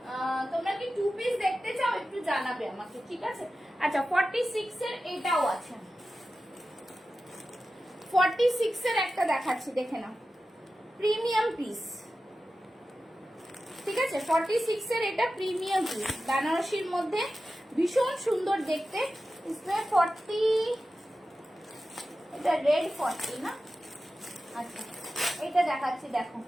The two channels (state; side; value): normal; both; correlation 0.93